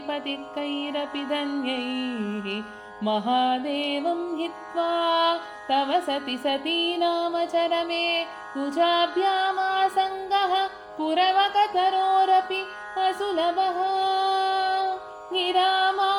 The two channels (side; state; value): both; identical; correlation 1.00